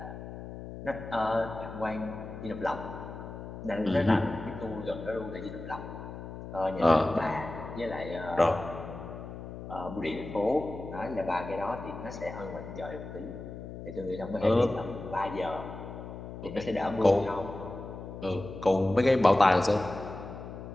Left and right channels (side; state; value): left; noise; hum, 10 dB below the sound